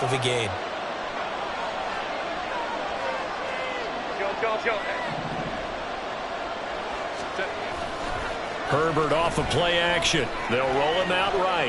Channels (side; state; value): both; identical; correlation 1.00